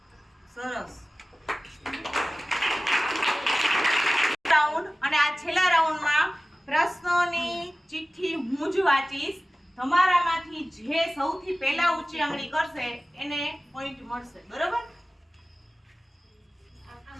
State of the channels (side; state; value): both; normal; correlation 0.97